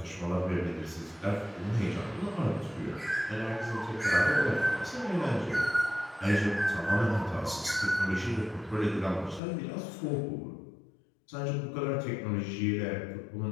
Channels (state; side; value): drops out; right; at 9.4 s